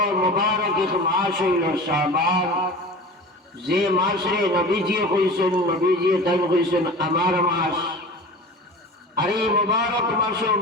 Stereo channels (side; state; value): both; normal; correlation 0.36